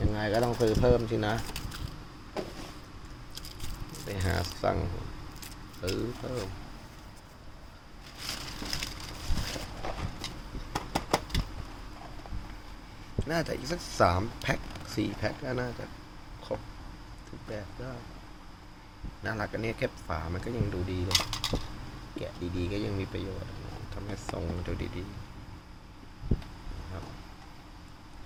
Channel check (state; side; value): identical; both; correlation 1.00